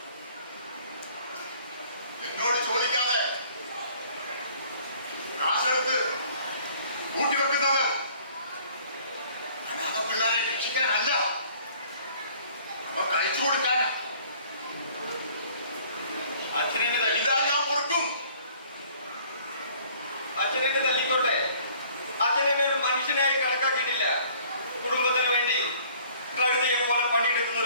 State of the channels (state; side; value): inverted; both; correlation -0.55